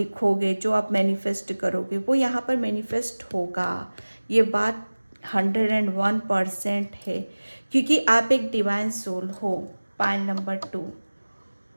जो आप मैनिफेस्ट करोगे, वो यहाँ पर मैनिफेस्ट होगा। ये बात 101% है, क्योंकि आप एक डिवाइन सोल हो। Pile number 2।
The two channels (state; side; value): inverted; both; correlation -1.00